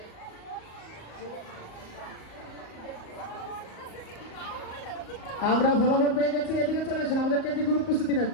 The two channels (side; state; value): right; late; 37 ms